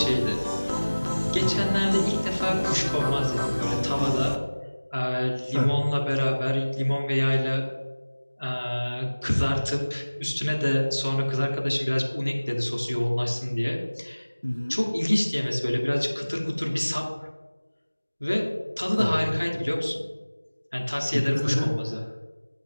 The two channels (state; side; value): inverted; both; correlation -1.00